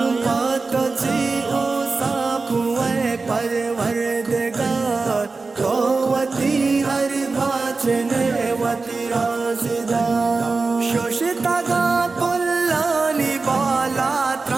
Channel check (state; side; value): quieter; left; 4.0 dB